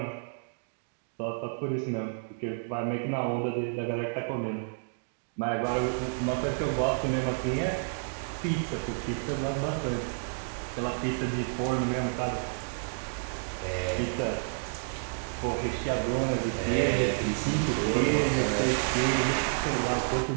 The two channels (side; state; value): left; silent; digital silence